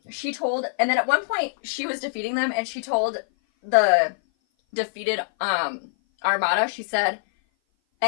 then at one point she was defeating them, and she told the defeated armada, she said,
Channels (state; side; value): silent; right; 57 dB below the other